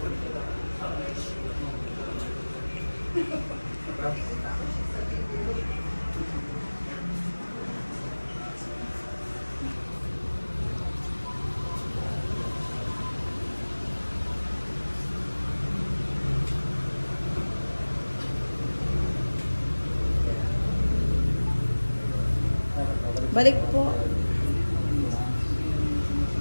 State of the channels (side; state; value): both; inverted; correlation -1.00